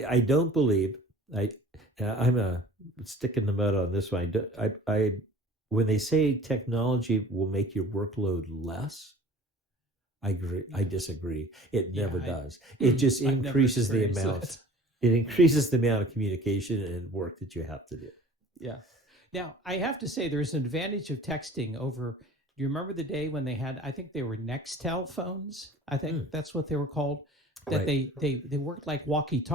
don't believe, I'm a stick in the mud on this one. I when they say technology will make your workload less, I agree. I disagree. It never does. It just increases the amount. It increases the amount of communication and work that you have to do. Yeah. Now, I have to say there's an advantage of texting over. Do you remember the day when they had, I think they were Nextel phones? I think that's what they were called. That right. they worked like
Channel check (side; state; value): both; normal; correlation 0.46